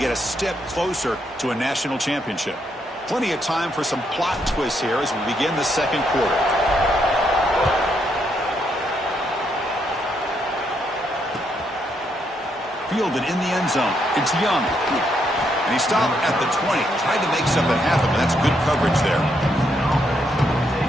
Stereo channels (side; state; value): both; normal; correlation 0.76